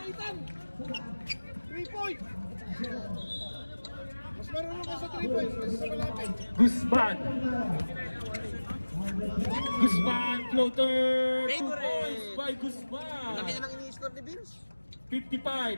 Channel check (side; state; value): both; inverted; correlation -1.00